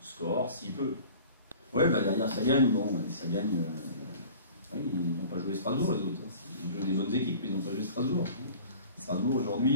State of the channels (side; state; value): both; inverted; correlation -0.43